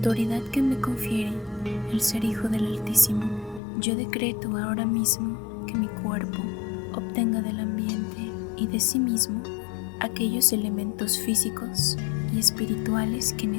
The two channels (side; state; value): right; drops out; at 3.6 s